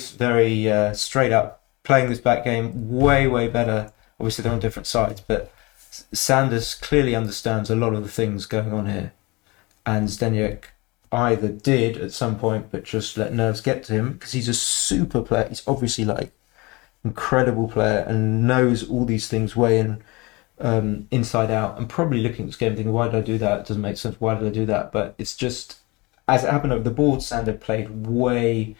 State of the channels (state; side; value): quieter; right; 24.8 dB